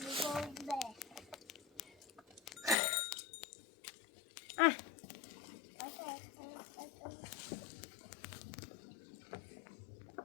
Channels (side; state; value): right; drops out; at 2.8 s